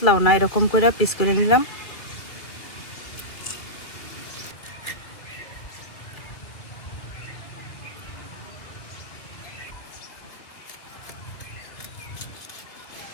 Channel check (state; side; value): late; right; 2.1 ms